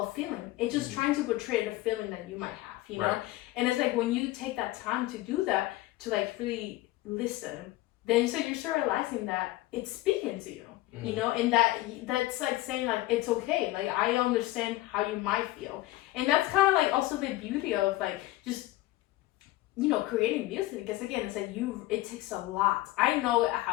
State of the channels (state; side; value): quieter; right; 17.6 dB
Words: a feeling. It's just trying to portray the feeling that you might have, you know? And it's like when you take that time to do that, to like really listen, then you start realizing that it's speaking to you, you know, and that's like saying like it's okay, like I understand how you might feel, and that's kind of like also the beauty of like just, you know, creating music, because again it's like it takes a lot. I know